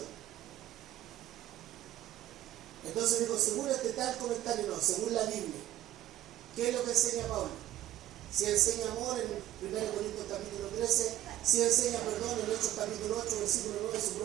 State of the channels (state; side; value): quieter; left; 13.7 dB